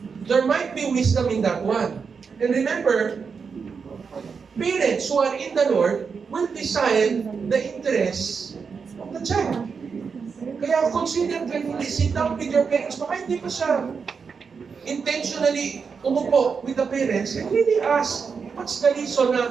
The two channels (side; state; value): left; quieter; 5.7 dB